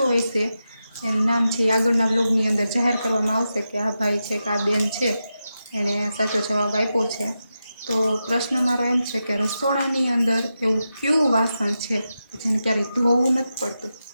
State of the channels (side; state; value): both; inverted; correlation -0.89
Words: હોય છે એનું નામ છે એ આગળના બ્લોગની અંદર જાહેર કરવામાં આવશે કે આ ભાઈ છે કે આ બેન છે એણે સાચો જવાબ આપ્યો છે. તો પ્રશ્ન મારો એમ છે કે રસોડાની અંદર એવું કયું વાસણ છે જેને ક્યારેય ધોવું નથી પડતું?